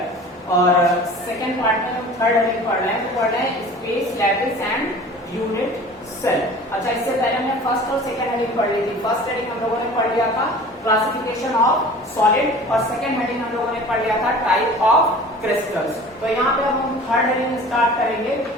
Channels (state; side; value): normal; both; correlation 0.42